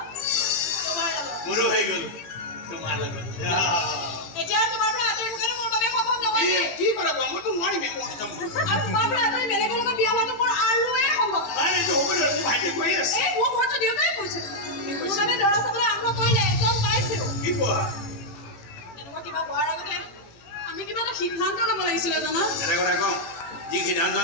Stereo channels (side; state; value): right; late; 18 ms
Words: তোমাৰ লগত মোৰো হৈ গ'ল তোমাৰ লগত এতিয়া তোমাৰ পৰা আঁতৰি থকাটো মোৰ বাবে সম্ভৱ নহয় কি কৰা মইতো নোৱাৰিম মই যাম আৰু তোমাৰ পৰা আঁতৰি বেলেগৰ লগত বিয়া হোৱাটো মোৰ আৰুৱে সম্ভৱ নাই এইটো হ'ব নহয় মোৰ ভাইটিয়ে কৈ আছে এই মোৰ ঘৰতো দেউতাই কৈছে মোৰ বাবে দৰা চাবলৈ আৰম্ভ কৰিলে এজন পাইছেও কি কোৱা এনেকুৱা কিবা হোৱাৰ আগতে আমি কিবা এটা সিদ্ধান্ত ল'ব লাগিছিলে জানা এটা কথা কওঁ যি সিদ্ধান্ত